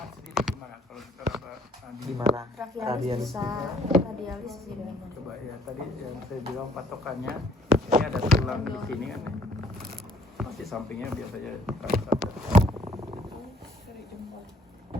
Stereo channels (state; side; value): normal; both; correlation 0.61